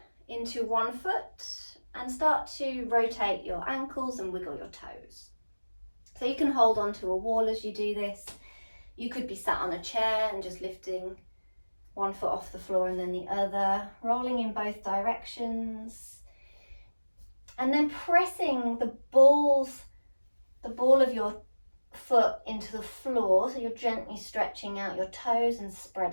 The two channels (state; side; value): inverted; both; correlation -1.00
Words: into one foot and start to rotate your ankles and wiggle your toes. So you can hold onto a wall as you do this. You could be sat on a chair and just lifting one foot off the floor and then the other, rolling in both directions. And then pressing the ball of your foot into the floor, so you're gently stretching out your toes and